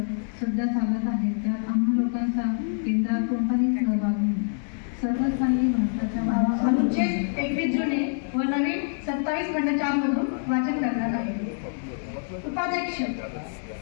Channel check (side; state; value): right; silent; digital silence